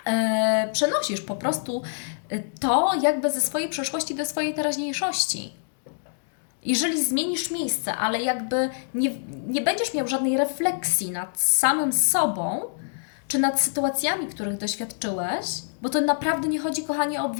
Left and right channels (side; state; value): right; silent; digital silence